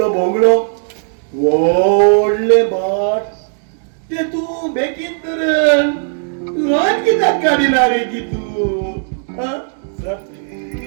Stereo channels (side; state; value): left; silent; digital silence